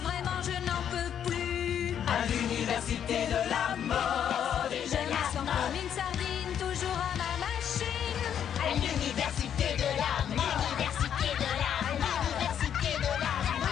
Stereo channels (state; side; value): quieter; right; 9.1 dB